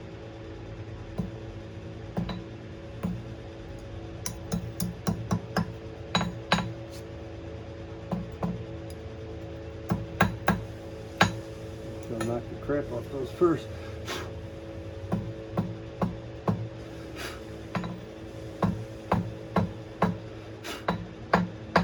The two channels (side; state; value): both; identical; correlation 1.00